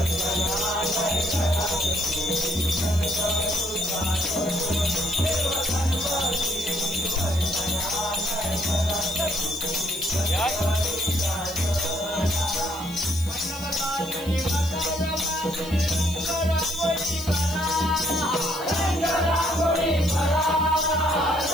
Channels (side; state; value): right; noise; hiss, 16 dB below the sound